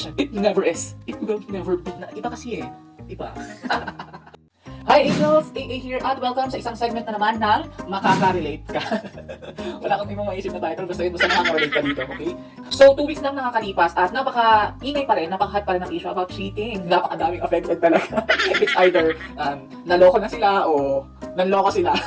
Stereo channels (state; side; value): identical; both; correlation 1.00